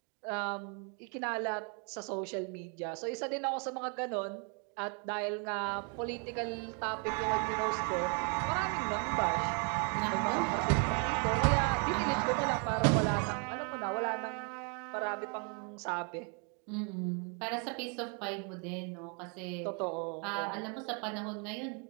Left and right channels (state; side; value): quieter; left; 37.2 dB